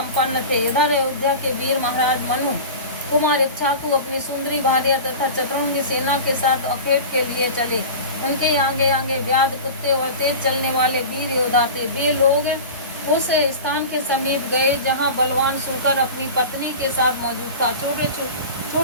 थे। इधर अयोध्या के वीर महाराज मनु कुमार इक्ष्वाकु अपनी सुंदरी भार्या तथा चतुरंगी सेना के साथ अखेट के लिए चले। उनके आगे आगे व्याध, कुत्ते और तेज चलने वाले वीर योद्धा थे। वे लोग उस स्थान के समीप गए जहां बलवान सूकर अपनी पत्नी के साथ मौजूद था।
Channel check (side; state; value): both; inverted; correlation -0.32